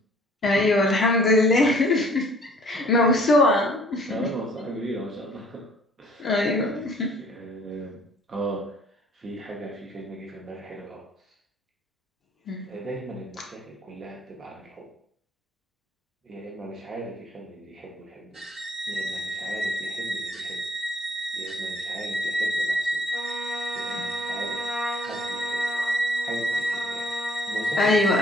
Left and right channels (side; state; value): both; normal; correlation 0.58